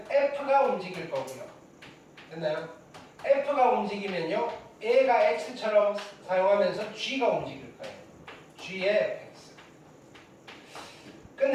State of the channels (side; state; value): both; identical; correlation 1.00